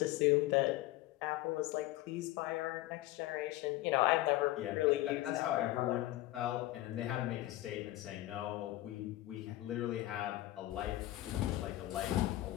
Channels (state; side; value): quieter; right; 16.5 dB